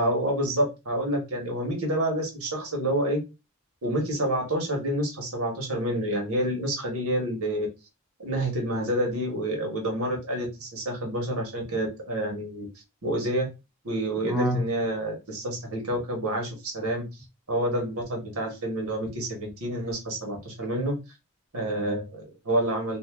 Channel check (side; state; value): both; normal; correlation 0.02